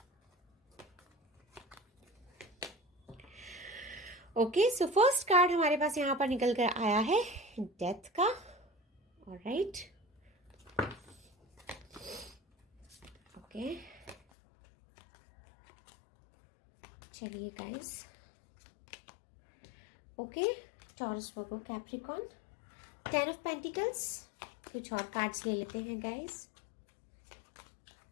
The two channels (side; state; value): right; drops out; at 14.2 s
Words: ओके, सो फर्स्ट कार्ड हमारे पास यहाँ पर निकल कर आया है डेथ का। ऑलराइट, ओके, चलिए guys. Okay, taurus, Virgo, Capricorn, 10 of pentacles. कुछ और कार्ड्स ले लेते हैं guys.